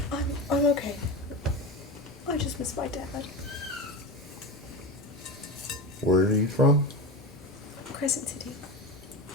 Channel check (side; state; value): both; normal; correlation 0.23